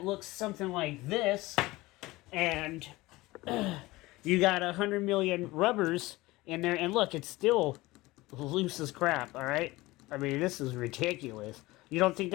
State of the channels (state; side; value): quieter; right; 20.0 dB